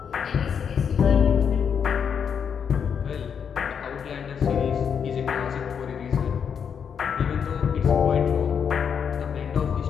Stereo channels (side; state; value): right; quieter; 7.2 dB